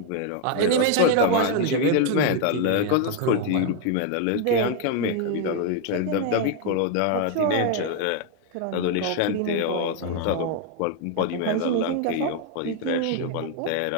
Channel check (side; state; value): both; different; correlation 0.01